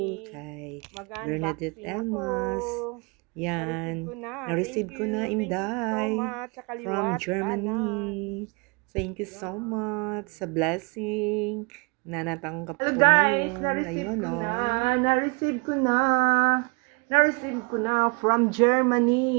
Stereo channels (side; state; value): left; quieter; 31.9 dB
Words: kay Bernadette Elmas. Yan, na-receive ko na, Inday, from Germany. Thank you so much sa blessing na natanggap ko guys, ngayon. Na-receive ko na from